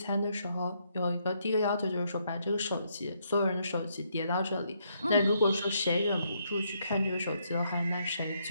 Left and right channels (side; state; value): both; inverted; correlation -0.74